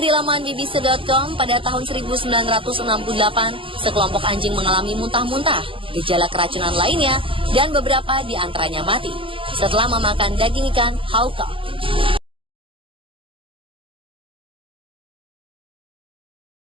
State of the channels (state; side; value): late; left; 0.25 ms